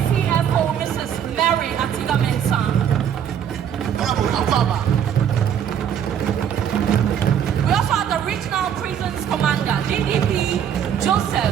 Mrs. Mary Atiga Mensah. We also have the Regional Prisons Commander, DDP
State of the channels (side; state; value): left; quieter; 8.9 dB